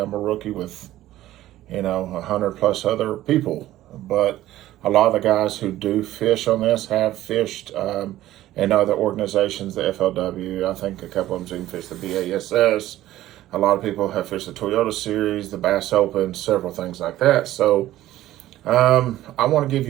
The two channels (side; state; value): left; quieter; 14.5 dB